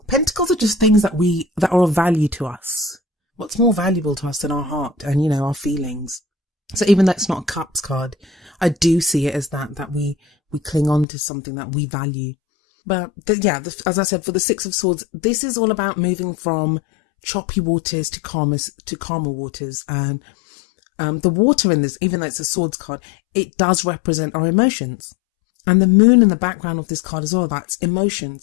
are just things that are of value to us. What's more valuable to us than our heart and, you know, our feelings? So even though it's not a cups card, I do see it as that we cling on to something that we value. But as I said, for the Six of Swords, this is all about moving from choppy waters to calmer waters. And the water in this, even though it's a swords card, it does represent our emotions. And the moon in the background of this card is all about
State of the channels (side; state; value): right; drops out; at 11.1 s